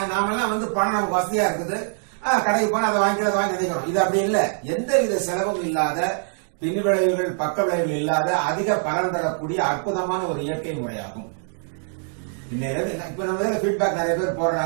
நாமெல்லாம் பணம் நமக்கு வசதியா இருக்குது, கடைக்கு போனா அதை வாங்கி நினைக்கிறோம். இது அப்படி இல்லை. எந்த வித செலவும் இல்லாத, பின் விளைவுகள் பக்க விளைவுகள் இல்லாத, அதிக பலன் தரக்கூடிய அற்புதமான ஒரு இயற்கை முறையாகும். இப்ப நம்ம ஃபீட்பேக் நிறைய பேர்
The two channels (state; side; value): silent; left; 63 dB below the other